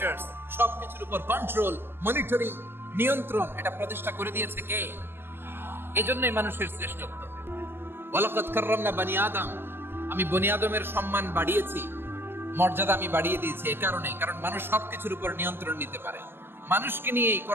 সবকিছুর উপর কন্ট্রোল, মনিটরিং, নিয়ন্ত্রণ, এটা প্রতিষ্ঠা করে দিয়েছে কে? এজন্যই মানুষের শ্রেষ্ঠত্ব। ওয়ালাকাদ কাররামনা বানি আদম। আমি বনি আদমের সম্মান বাড়িয়েছি, মর্যাদা আমি বাড়িয়ে দিয়েছি এই কারণে, কারণ মানুষ সবকিছুর উপর নিয়ন্ত্রণ নিতে পারে। মানুষকে নিয়ে এই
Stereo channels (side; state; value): left; late; 0.10 ms